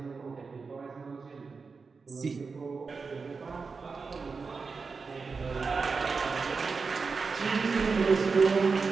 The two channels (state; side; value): quieter; left; 4.8 dB